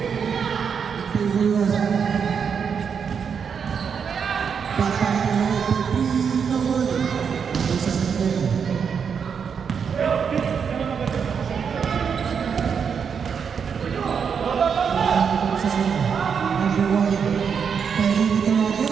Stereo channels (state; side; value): quieter; left; 6.7 dB